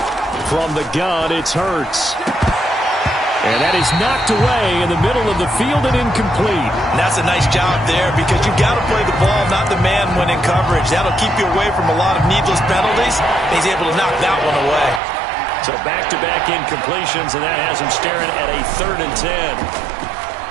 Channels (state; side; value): drops out; left; at 15.0 s